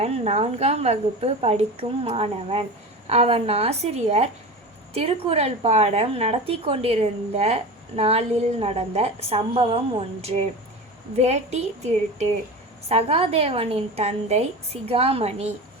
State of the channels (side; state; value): both; normal; correlation 0.29